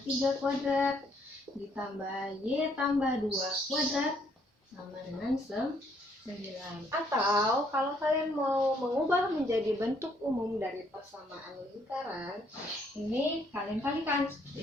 3 kuadrat ditambah Y tambah 2 kuadrat sama dengan 9. Atau kalau kalian mau mengubah menjadi bentuk umum dari persamaan lingkaran, ini kalian kalikan.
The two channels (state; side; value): normal; both; correlation 0.68